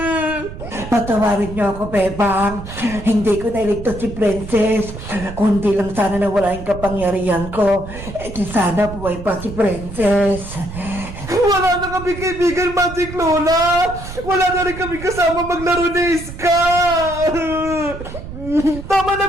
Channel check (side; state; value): right; noise; rumble, 11 dB below the sound